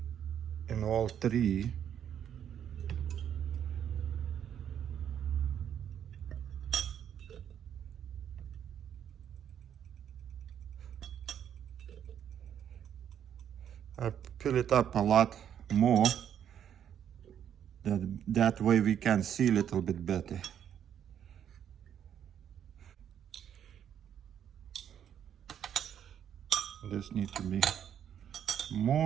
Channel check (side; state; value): left; quieter; 9.3 dB